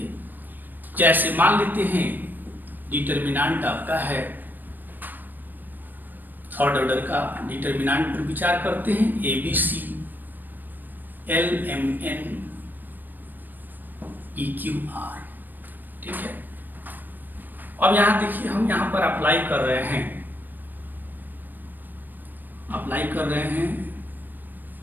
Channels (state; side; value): late; left; 0.090 ms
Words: जैसे मान लेते हैं डिटर्मिनेंट आपका है, थर्ड ऑर्डर का डिटर्मिनेंट पर विचार करते हैं, ABC LMN EQR। ठीक है, अब यहाँ देखिए हम यहाँ पर अप्लाई कर रहे हैं,